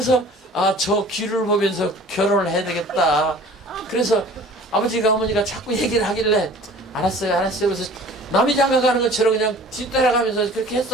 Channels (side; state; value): both; normal; correlation 0.46